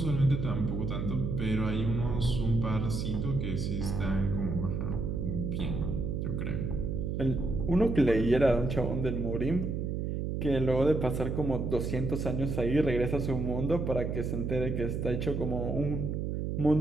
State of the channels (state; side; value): noise; right; hum, 2 dB below the sound